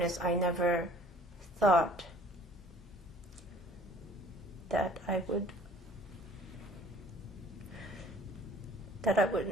I never thought that I would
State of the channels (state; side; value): normal; both; correlation 0.53